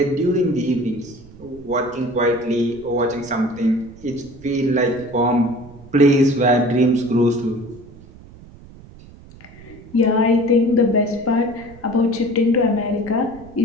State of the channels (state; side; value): noise; right; rumble, 21 dB below the sound